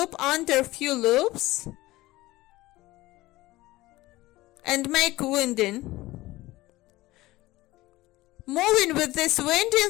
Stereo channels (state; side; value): quieter; right; 18.4 dB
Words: under few loops, and make winding. Moving with this winding